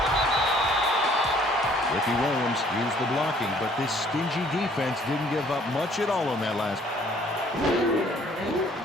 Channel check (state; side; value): normal; both; correlation 0.59